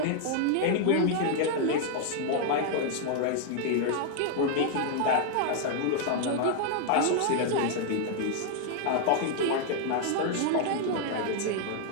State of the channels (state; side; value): different; both; correlation 0.00